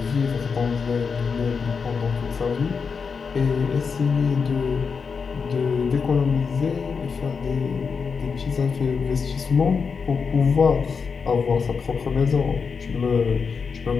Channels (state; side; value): quieter; right; 5.6 dB